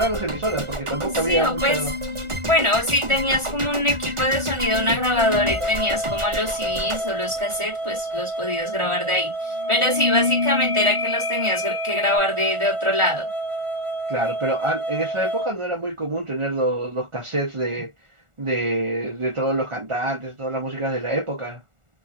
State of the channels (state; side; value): late; left; 1.4 ms